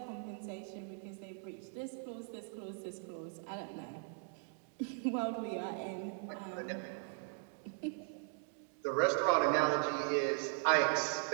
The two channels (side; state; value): left; silent; 52 dB below the other